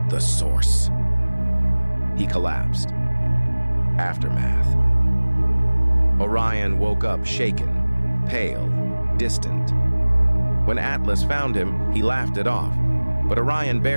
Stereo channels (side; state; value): both; inverted; correlation -1.00